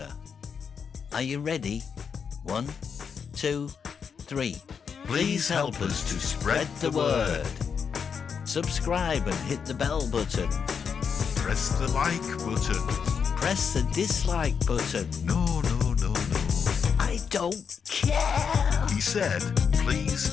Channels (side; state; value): right; quieter; 6.5 dB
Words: Are you ready? 1, 2, 3. Please help us to spread the word. Subscribe and hit the bell button. Press the like button. Press the dislike button. No. I don't care. He said,